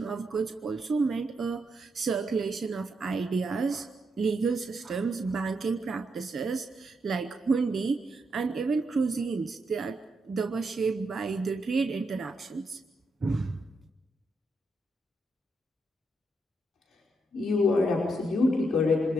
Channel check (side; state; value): both; normal; correlation 0.81